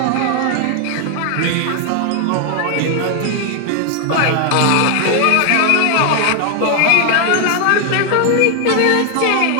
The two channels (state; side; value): different; both; correlation 0.00